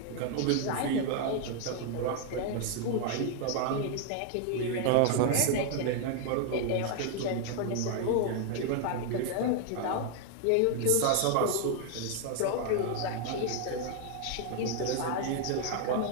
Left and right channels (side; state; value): both; different; correlation 0.00